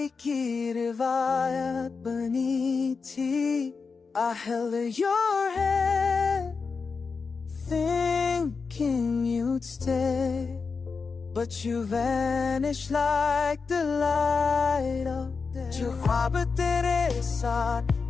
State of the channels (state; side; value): quieter; right; 4.9 dB